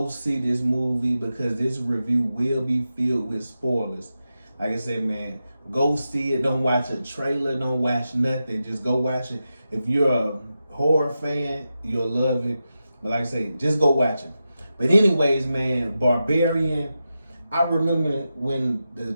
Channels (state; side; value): inverted; both; correlation -0.90